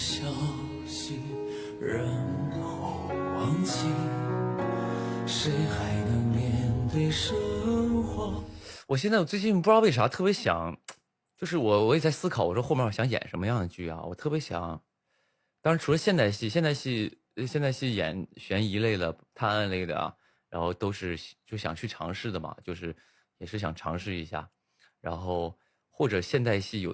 息，然后忘记，谁还能面对生活？我最近不知道为啥特别想，就是我也在思考，我说后面我想演什么样的剧啊？我特别想，当然除了现代戏演悬疑类的、探案类的啊，然后都是就想去尝试的嘛，就是也是想尝试一下，然后或者现代戏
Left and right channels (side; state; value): both; identical; correlation 1.00